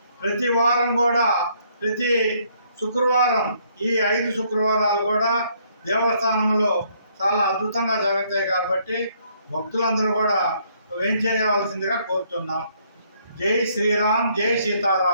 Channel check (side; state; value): both; inverted; correlation -0.68